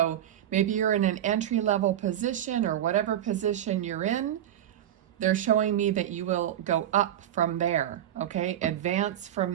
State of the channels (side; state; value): left; quieter; 11.1 dB